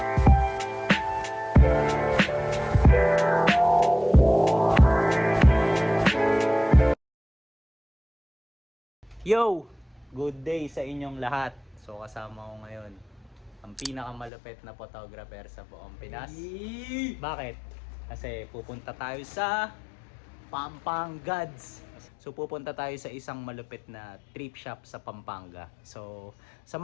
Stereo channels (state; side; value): drops out; right; at 14.3 s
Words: Yo! Good day sa inyong lahat. So kasama ko ngayon ang pinakamalupit na photographer sa buong Pinas. Bakit? Kasi pupunta tayo sa Pampangads. So pupunta tayo sa isang malupit na trip shop sa Pampanga. So